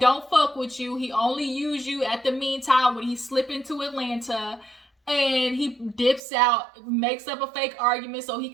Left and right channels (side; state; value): left; drops out; at 6.2 s